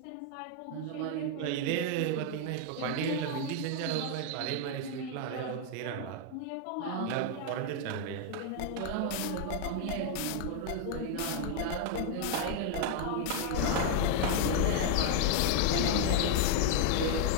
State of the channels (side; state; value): both; different; correlation 0.00